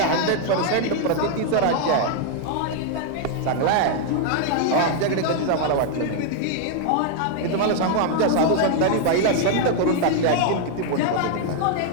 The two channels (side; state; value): both; different; correlation 0.00